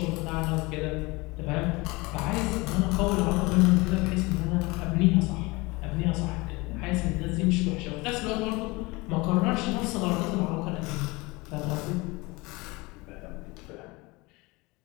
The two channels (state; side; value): quieter; right; 24.1 dB